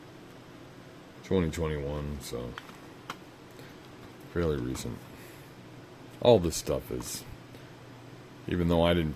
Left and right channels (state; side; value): identical; both; correlation 1.00